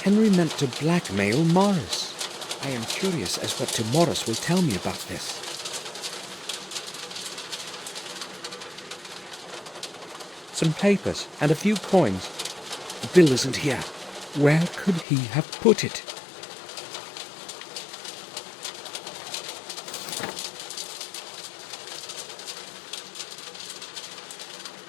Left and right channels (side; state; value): right; drops out; at 15.1 s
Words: Henry meant to blackmail Morris. I am curious as what Morris will tell me about this. Some papers and a few coins. The bill isn't here. Where could he have put it?